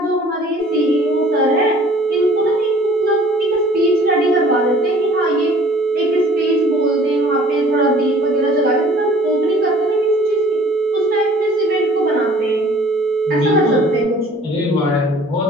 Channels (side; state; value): both; normal; correlation 0.52